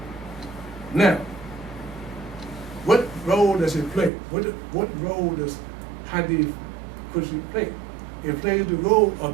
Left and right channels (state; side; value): drops out; left; at 4.1 s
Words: Now, what role does it play? What role does Hadith Qudsi play? It plays the role